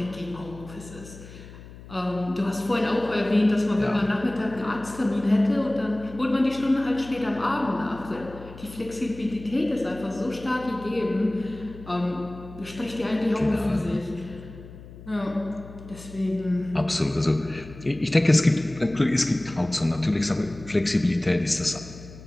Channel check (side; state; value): left; noise; hum, 17 dB below the sound